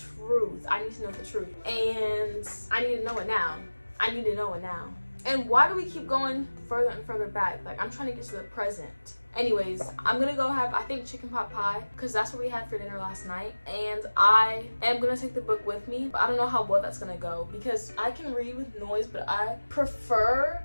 truth. I need to know the truth. And I need to know it now. I need to know it now. And why do we keep going further and further back? Like, I'm trying to get to the present. Anyways, I'm gonna go have, I think, chicken pot pie, because that's what we had for dinner last night. And I am gonna take the book with me, but I don't know how well that's gonna go, because I can read with noise, but I prefer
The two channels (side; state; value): both; inverted; correlation -1.00